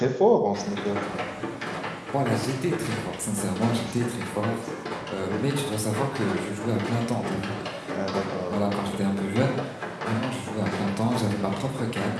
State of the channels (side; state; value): both; identical; correlation 1.00